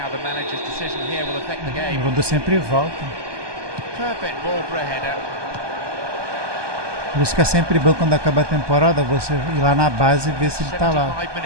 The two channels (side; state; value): left; late; 1.2 ms